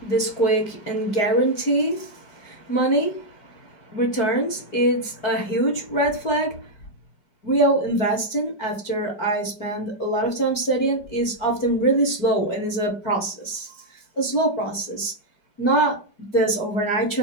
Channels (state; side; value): late; right; 4.9 ms